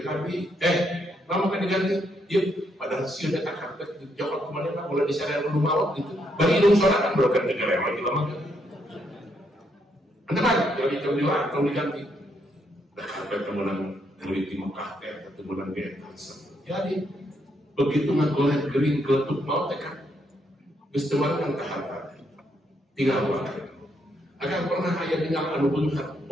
abdi lama kan diganti, yuk padahal sieu teh karpet dijokot kemana lah, mulai disana dulu mawak gitu. Bagi indung soalnya kan berokan negara lagi lama kan. Anda kan, jadi jam 5 diganti. Dah karpet kemudian dari di Mekah teh, kemudian di Etansen. Jadi begitu ngagoreng gering geletuk mau teh kan, geus teu kan ka harta. Tinggal wae. Akan pernah aya tinggal anu beunghar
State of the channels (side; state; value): both; normal; correlation 0.75